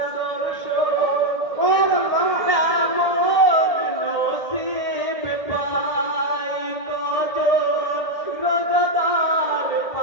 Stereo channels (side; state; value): right; late; 1.6 ms